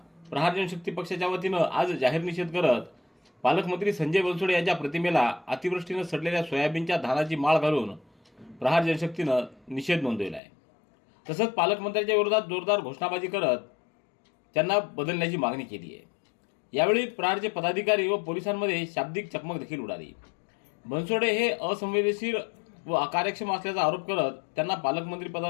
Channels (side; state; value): right; drops out; at 10.4 s